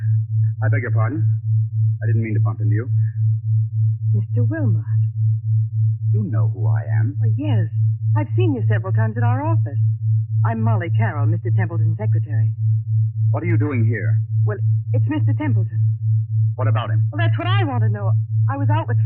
I beg your pardon. I didn't mean to bump into you. Mr. Wilmot. You know who I am. Oh, yes. I've seen you several times at our office. I'm Molly Carroll, Mr. Templeton's secretary. What are you doing here? Well, it's Mr. Templeton. What about him? Well, that's what I want to know. I was out with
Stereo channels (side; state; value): both; identical; correlation 1.00